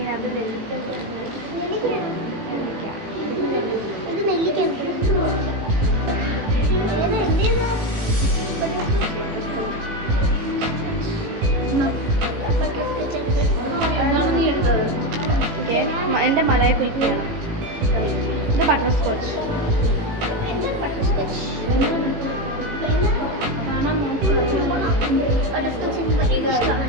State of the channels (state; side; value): late; left; 18 ms